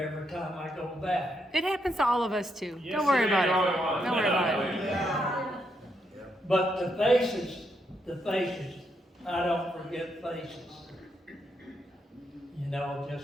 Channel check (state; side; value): normal; both; correlation 0.79